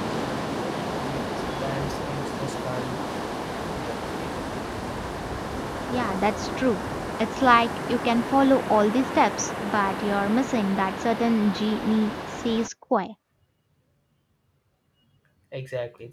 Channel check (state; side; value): identical; both; correlation 1.00